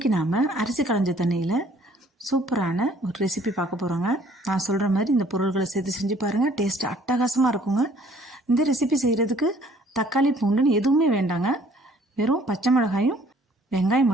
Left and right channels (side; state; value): both; normal; correlation 0.58